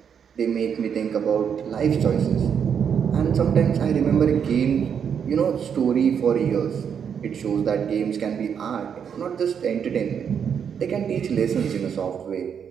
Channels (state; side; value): quieter; left; 7.6 dB